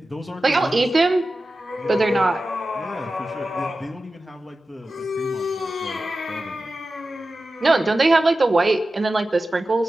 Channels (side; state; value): both; normal; correlation 0.94